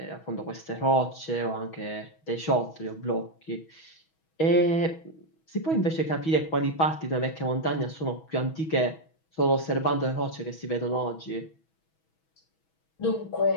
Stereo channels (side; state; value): right; late; 6.2 ms